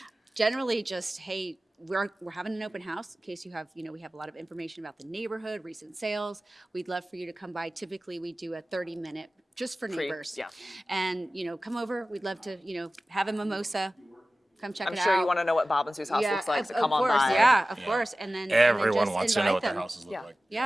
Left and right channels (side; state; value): both; normal; correlation 0.96